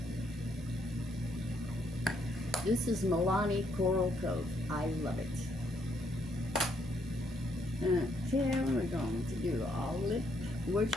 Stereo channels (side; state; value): both; normal; correlation 0.72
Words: This is Milani Coral Cove. I love it. Okay, we're going to do all lip.